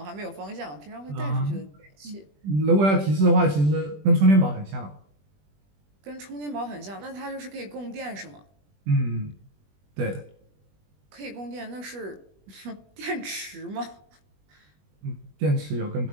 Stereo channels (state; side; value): late; left; 20 ms